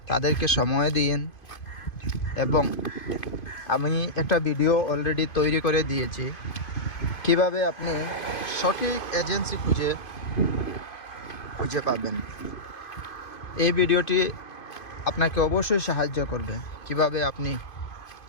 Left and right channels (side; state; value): right; late; 2.5 ms